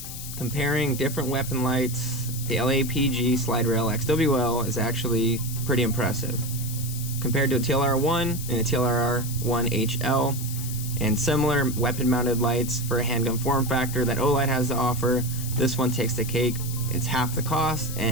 comparing different weapon lights, the LAPG Slide Rail XWL is actually pretty impressive. Compared to a TLR-1 and a TLR-1 HL, and similar weapon-mounted lights for a handgun form factor that Olight has to offer, this one takes the cake. It's half the cost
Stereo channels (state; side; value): noise; left; hiss, 9 dB below the sound